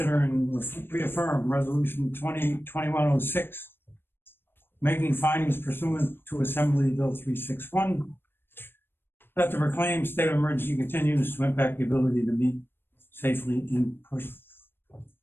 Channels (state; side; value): late; right; 0.10 ms